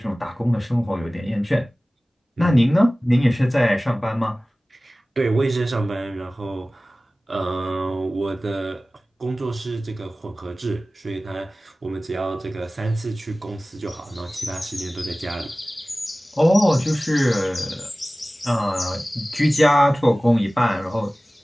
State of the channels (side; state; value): both; normal; correlation 0.97